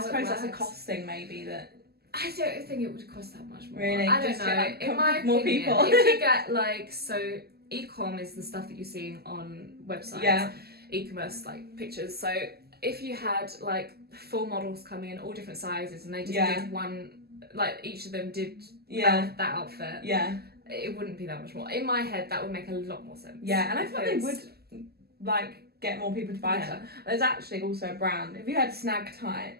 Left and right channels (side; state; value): left; late; 0.46 ms